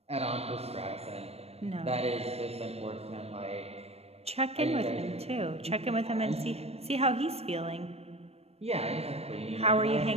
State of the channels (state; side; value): late; left; 0.30 ms